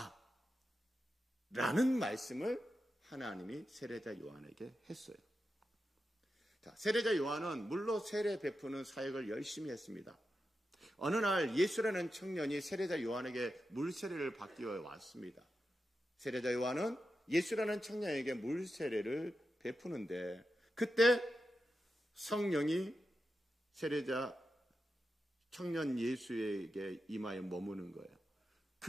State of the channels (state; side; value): normal; both; correlation 0.89